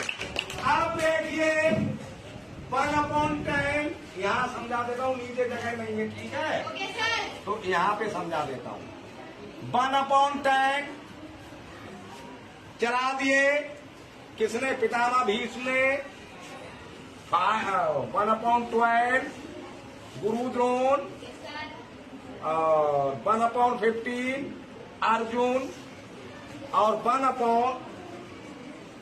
अब देखिए 1/10, यहाँ समझा देता हूँ, नीचे जगह नहीं है, ठीक है। Okay, sir. तो यहाँ पे समझा देता हूँ। 1/10 चला दिए, किसने? पितामह भीष्म ने। 1/12 गुरु द्रोण, Yes, sir. और 1/15 अर्जुन, और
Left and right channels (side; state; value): both; identical; correlation 1.00